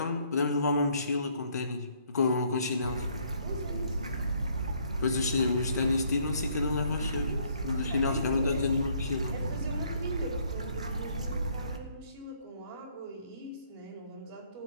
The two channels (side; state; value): both; inverted; correlation -0.66